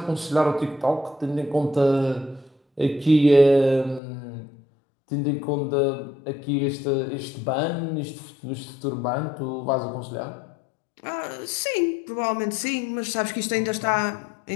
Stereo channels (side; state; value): right; drops out; at 4.0 s